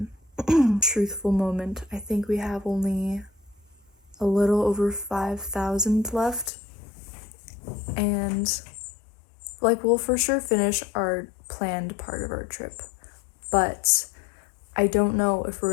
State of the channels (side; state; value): right; drops out; at 6.5 s